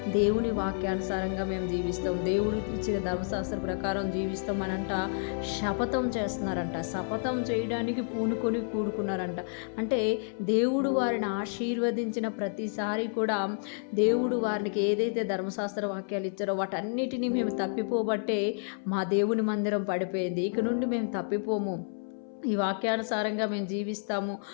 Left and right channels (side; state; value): right; silent; 58 dB below the other